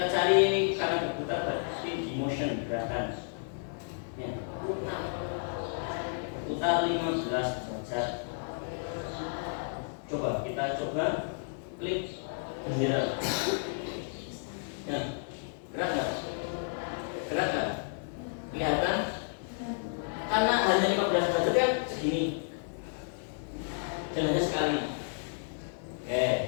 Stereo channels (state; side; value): silent; right; digital silence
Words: cari karena berputar berarti di motion gerakan. Ya, berputar 15 derajat. klik bendera. Ya, gerak nggak? Gerak nggak? Kelihatan? Karena hanya 15 derajat kan segini. Dan hanya sekali.